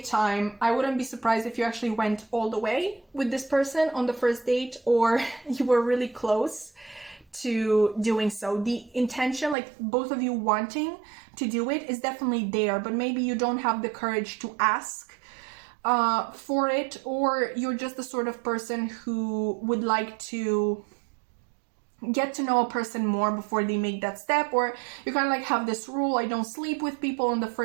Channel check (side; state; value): left; drops out; at 9.6 s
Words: time. I wouldn't be surprised if you actually went all the way with this person on the first date, or you were really close to doing so. The intention, like both of you wanting to do it, is definitely there, but maybe you don't have the courage to ask for it, or you're just the sort of person who would like to get to know a person more before they make that step, or you kind of like have this rule, I don't sleep with people on the